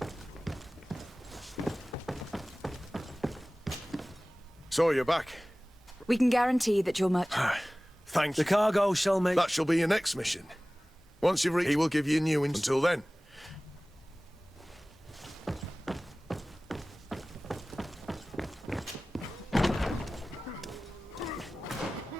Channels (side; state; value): both; normal; correlation 0.98